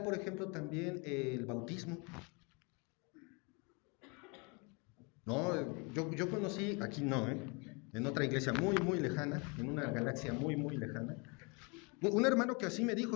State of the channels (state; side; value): quieter; right; 31.5 dB